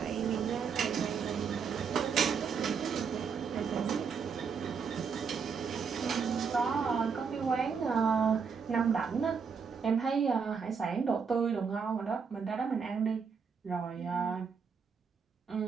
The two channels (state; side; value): quieter; left; 6.0 dB